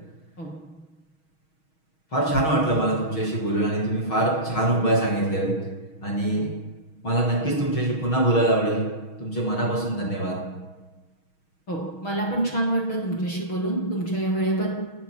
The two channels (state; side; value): late; right; 6.3 ms